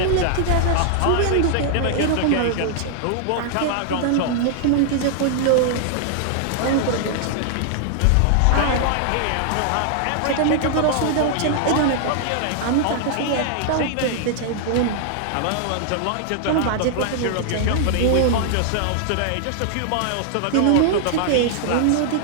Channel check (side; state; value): both; different; correlation -0.01